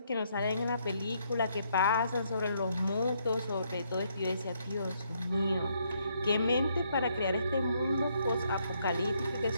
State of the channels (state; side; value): inverted; both; correlation -0.72